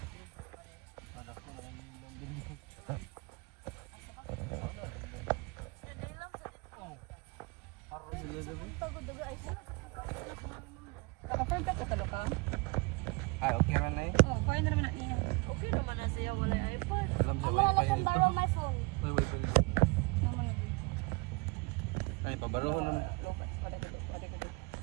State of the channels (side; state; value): left; quieter; 27.7 dB